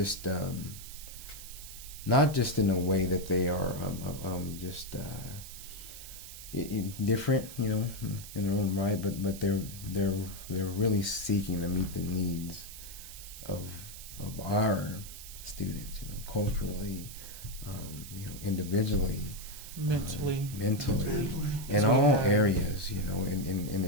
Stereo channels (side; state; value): right; noise; hiss, 13 dB below the sound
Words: in a way that they are different, in their own right, but they're really seeking to meet the needs of our students, culturally, individually, mentally, in all areas, and